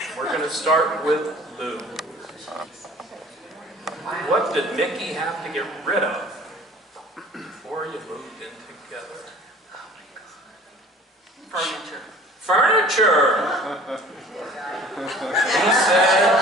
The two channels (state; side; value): normal; both; correlation 0.47